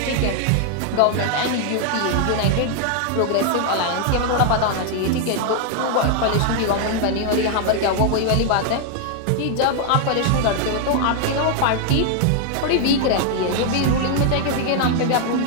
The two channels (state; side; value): different; both; correlation 0.00